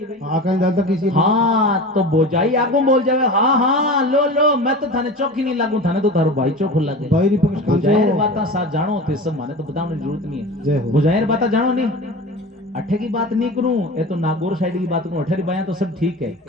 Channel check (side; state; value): both; normal; correlation 0.32